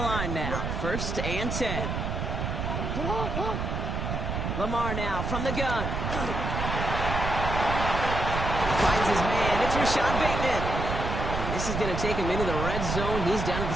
now. 1st and 10. Lamar now from the gun. Finds his man. It's Rashad Bateman. And this is going to take him into the red zone. He's down at the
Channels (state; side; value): noise; right; rumble, 2 dB below the sound